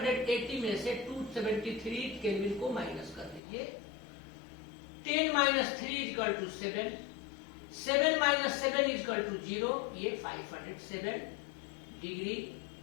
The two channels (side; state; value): right; drops out; at 3.4 s